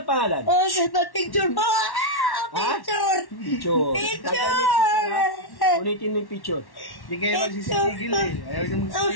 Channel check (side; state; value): right; late; 1.1 ms